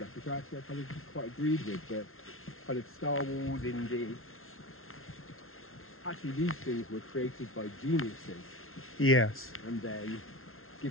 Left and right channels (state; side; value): late; right; 0.62 ms